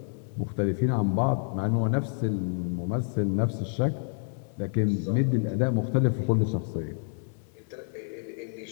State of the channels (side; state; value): right; silent; 59 dB below the other